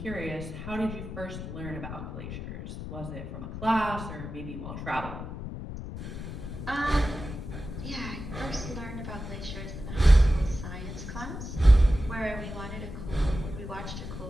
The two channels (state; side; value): noise; left; rumble, 8 dB below the sound